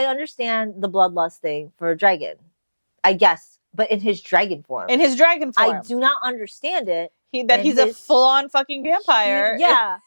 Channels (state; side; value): inverted; both; correlation -1.00